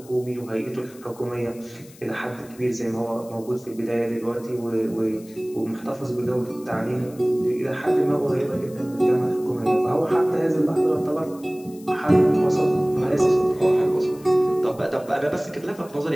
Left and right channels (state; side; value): noise; left; hiss, 23 dB below the sound